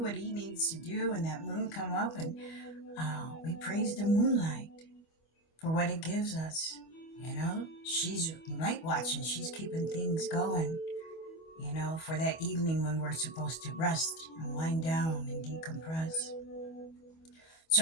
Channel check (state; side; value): late; right; 25 ms